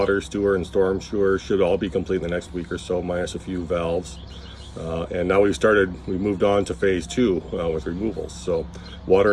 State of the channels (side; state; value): both; identical; correlation 1.00